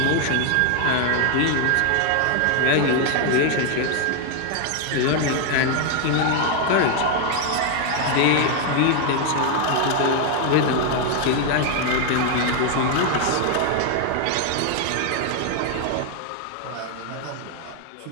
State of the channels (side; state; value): both; different; correlation 0.00